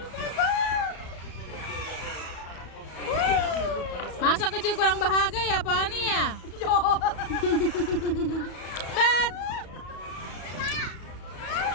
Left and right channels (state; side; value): late; right; 34 ms